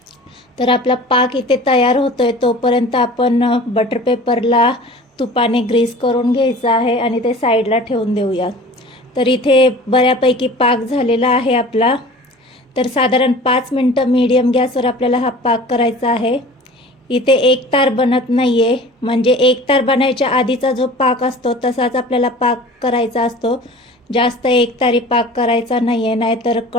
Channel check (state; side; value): normal; both; correlation 0.42